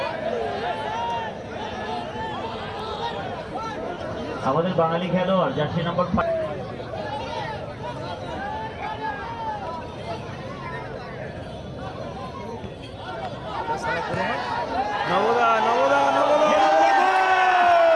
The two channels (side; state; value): both; identical; correlation 1.00